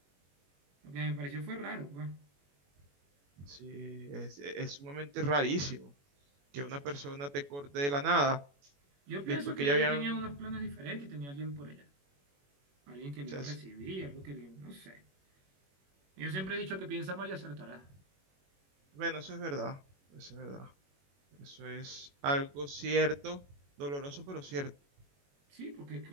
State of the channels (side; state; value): left; late; 21 ms